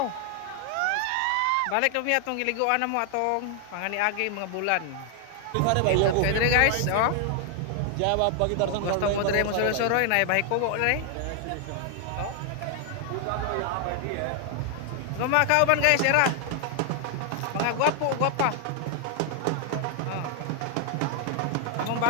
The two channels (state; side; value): different; both; correlation 0.00